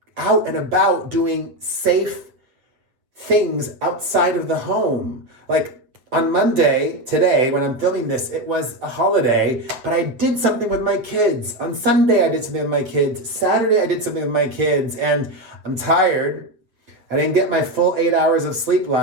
out and about doing safe things outside of the home. Like on Monday, today, when I'm filming this, it was a holiday, but I did something with my kids. On Sunday, I did something with my kids. Saturday, I did something with my kids, and I'm tired. I didn't get my full 8 hours of sleep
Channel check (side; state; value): left; late; 7.9 ms